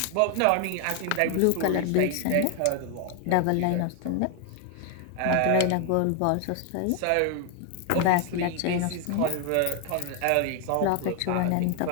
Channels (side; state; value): both; different; correlation 0.01